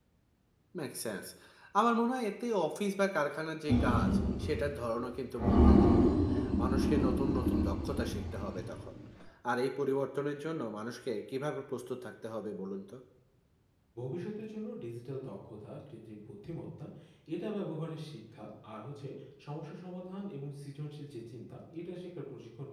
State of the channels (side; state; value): both; identical; correlation 1.00